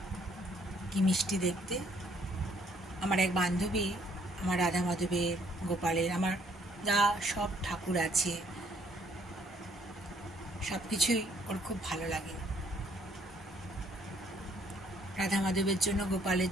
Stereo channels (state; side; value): normal; both; correlation 0.65